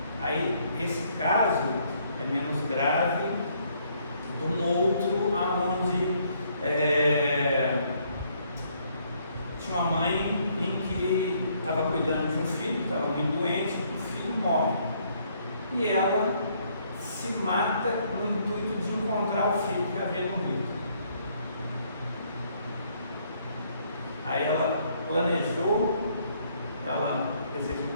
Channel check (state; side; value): inverted; both; correlation -0.68